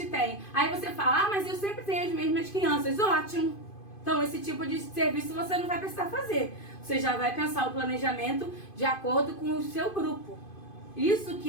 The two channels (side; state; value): right; late; 2.5 ms